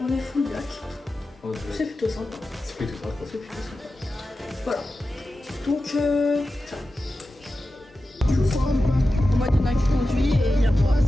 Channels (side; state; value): both; normal; correlation 0.93